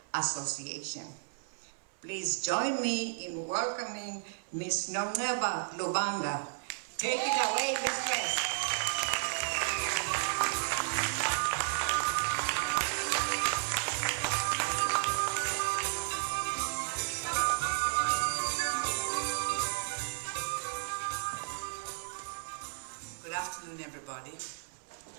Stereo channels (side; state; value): left; silent; 56 dB below the other